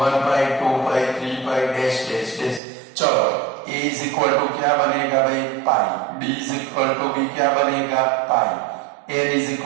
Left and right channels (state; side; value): drops out; left; at 2.6 s